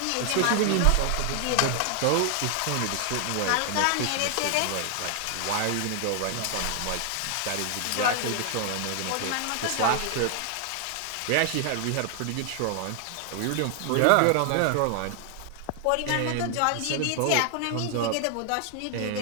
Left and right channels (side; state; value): both; different; correlation 0.00